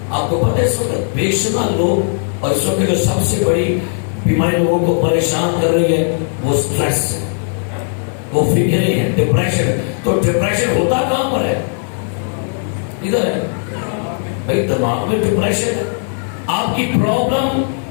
آپ کو پتہ ہے اس وقت بے شمار لوگ، اور اس وقت جو سب سے بڑی بیماری لوگوں کو پریشان کر رہی ہے وہ سٹریس ہے، وہ فکریں ہیں، ڈپریشن. تو ڈپریشن ہوتا کہاں پر ہے؟ ادھر ہے بھائی، دماغ میں ڈپریشن ہے. آپ کی پرابلم،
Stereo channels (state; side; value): silent; right; digital silence